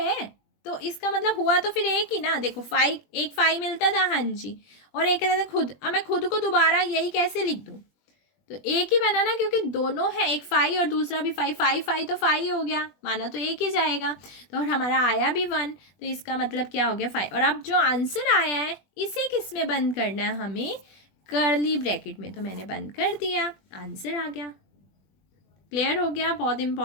तो इसका मतलब हुआ तो फिर एक ही ना। देखो 5, एक 5 मिलता था, हाँ जी, और एक कहता था खुद। अब मैं खुद को दोबारा यही कैसे लिख दूँ? तो एक ही बना ना, क्योंकि दोनों है, एक 5 और दूसरा भी 5, 5 5 तो 5 हो गया, माना तो एक ही जाएगा। तो और हमारा आया भी 1, तो इसका मतलब क्या हो गया? 5। और अब जो आंसर आया है इसे किस में बंद करना है? हमें कर्ली ब्रैकेट में। तो मैंने बंद कर दिया, आंसर आ गया। क्लियर हो गया? बहुत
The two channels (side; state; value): right; late; 20 ms